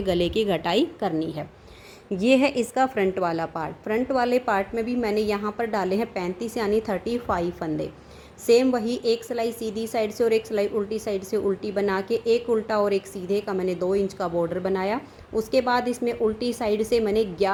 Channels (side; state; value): both; identical; correlation 1.00